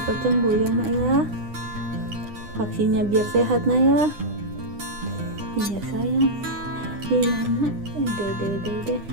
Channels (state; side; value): late; left; 9.8 ms